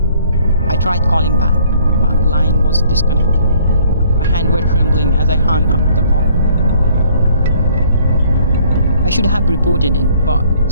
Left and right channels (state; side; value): inverted; both; correlation -0.60